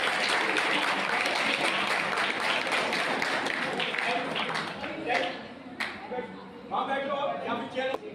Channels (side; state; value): both; identical; correlation 1.00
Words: वहाँ बैठो, यहाँ पे चेयर